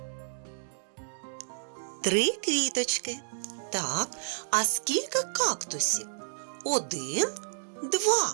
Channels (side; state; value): left; silent; digital silence